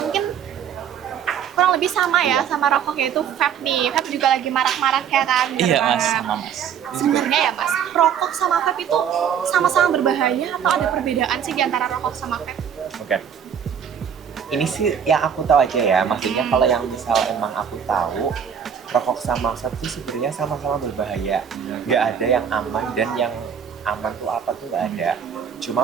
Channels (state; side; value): quieter; left; 8.0 dB